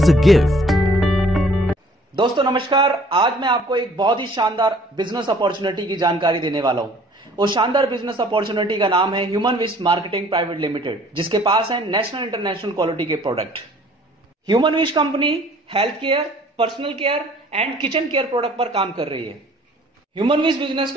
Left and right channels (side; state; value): both; normal; correlation 0.55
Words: a gift. दोस्तों नमस्कार। आज मैं आपको एक बहुत ही शानदार बिजनेस अपॉर्चुनिटी की जानकारी देने वाला हूं। वो शानदार बिजनेस अपॉर्चुनिटी का नाम है human wish marketing private limited, जिसके पास है नेशनल इंटरनेशनल क्वालिटी के product. Human wish company health care, personal care and kitchen care product पर काम कर रही है। ह्यूमन विश बिजनेस